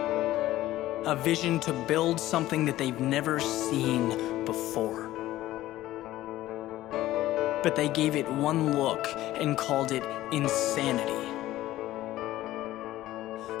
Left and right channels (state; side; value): quieter; right; 15.3 dB